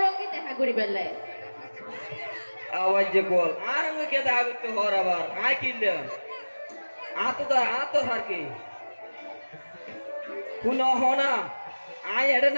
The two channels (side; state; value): both; inverted; correlation -1.00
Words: ওকে দেখা করি বেলায় আওয়াজ যে বল আর আমি কে দেখা করতে হর আবার আয় কিনলে আতো হার কি কোন হনা আয় এড়ে